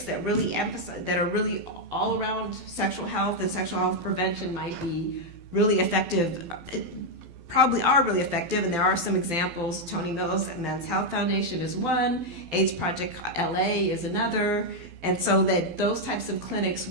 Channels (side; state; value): left; late; 12 ms